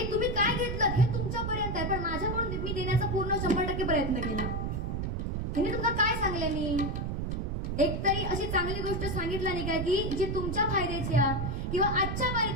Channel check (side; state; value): right; noise; rumble, 2 dB below the sound